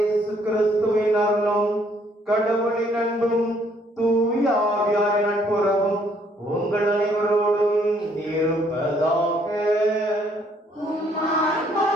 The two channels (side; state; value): both; normal; correlation 0.66